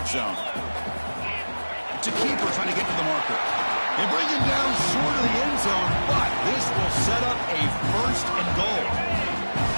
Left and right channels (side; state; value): both; inverted; correlation -1.00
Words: zone. It's a keeper trying to get to the marker. They bring him down short of the end zone, but this will set up a first and goal.